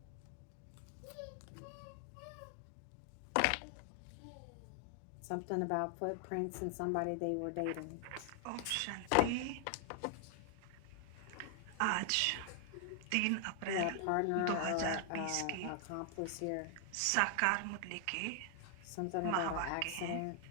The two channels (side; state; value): both; different; correlation 0.00